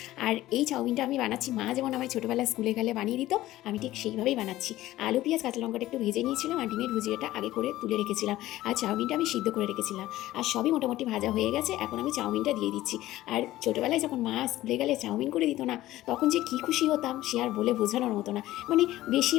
আর এই চাউমিনটা আমি বানাচ্ছি, মা যেমন আমায় ছোটোবেলায় স্কুলে গেলে বানিয়ে দিত, আমি ঠিক সেইভাবেই বানাচ্ছি। আলু পেঁয়াজ কাঁচা লঙ্কাটা একটু ভেজে নিয়েছিলাম, আর ডিমের ভুজিয়াটা আগে করে তুলে রেখেছিলাম, আর চাউমিনটা আমি সিদ্ধ করে রেখেছিলাম। আর সবই মোটামুটি ভাজা হয়ে গেছে, এখন আমি চাউমিনটা দিয়ে দিচ্ছি। আর ছোটোবেলায় যখন মা স্কুলে গেলে চাউমিন করে দিত না, তখন যে কী খুশি হতাম সে আর বলে বোঝানোর মতো না। মানে বেশি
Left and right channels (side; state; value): right; quieter; 15.7 dB